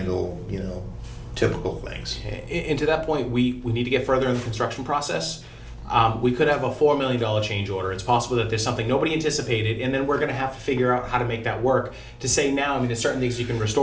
you know, typical things. And to that point, we need to get further in the construction process. We could have a $4 million change order. It's possible that there's something nobody anticipated, and then we're going to have to figure out how to make that work. To say now, I mean, there's certain things you can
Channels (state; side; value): identical; both; correlation 1.00